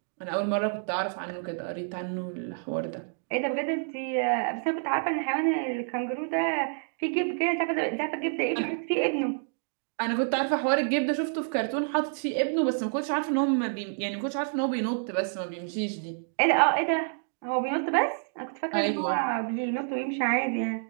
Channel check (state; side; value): silent; left; digital silence